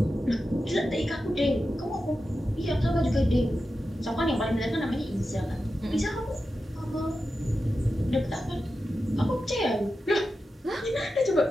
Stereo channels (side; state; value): both; normal; correlation 0.91